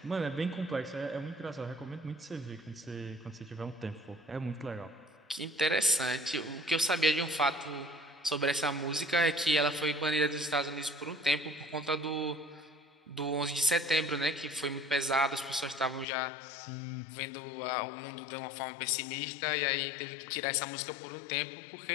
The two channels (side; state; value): right; drops out; at 16.1 s